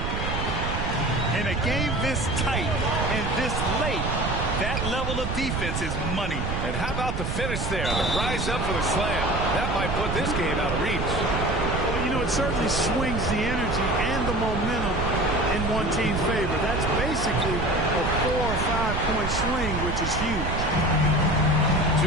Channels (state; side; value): noise; right; rumble, 2 dB below the sound